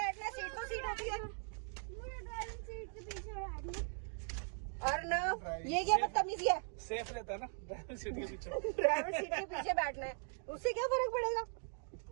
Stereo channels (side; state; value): left; silent; 51 dB below the other